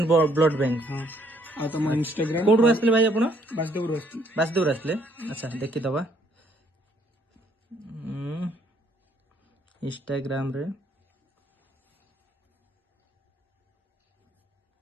blood bank हां आ तुम इंस्टाग्राम कोड आसले भाई आपण वासुदेव रोस्ती वासुदेव आसले अच्छा देखि दबा इंस्टाग्राम रे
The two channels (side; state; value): both; normal; correlation 0.66